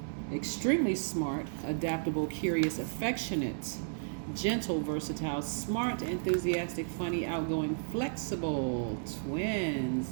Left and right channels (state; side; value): silent; left; digital silence